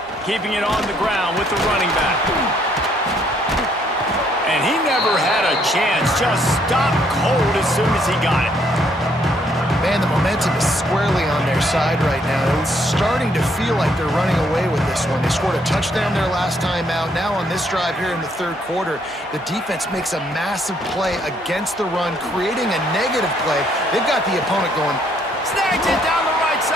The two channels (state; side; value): normal; both; correlation 0.69